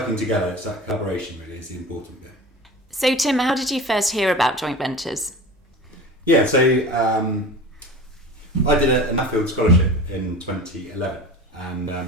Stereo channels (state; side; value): normal; both; correlation 0.34